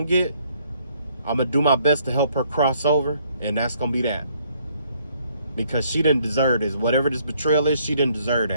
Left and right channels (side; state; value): both; inverted; correlation -0.67